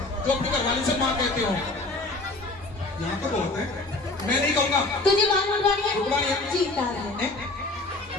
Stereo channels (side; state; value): right; quieter; 3.0 dB